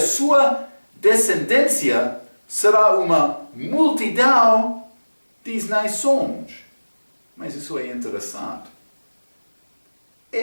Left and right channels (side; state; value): both; inverted; correlation -1.00